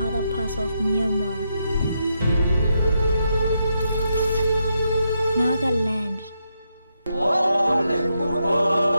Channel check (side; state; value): both; inverted; correlation -0.82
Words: parts of Myanmar. Naga Land.